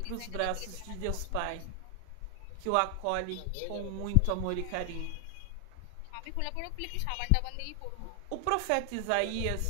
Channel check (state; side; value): different; both; correlation 0.00